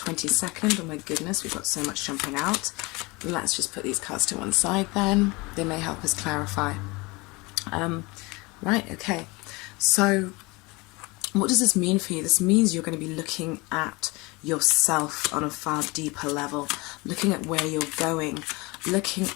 Oh my goodness, we've got so much jumping out. Let's just put these cards to one side then. They may help us clarify. Right, okay. So what does this mean for you? This means you're going to be looking at yourself on a far deeper level, looking at where you're going, looking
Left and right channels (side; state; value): right; quieter; 24.9 dB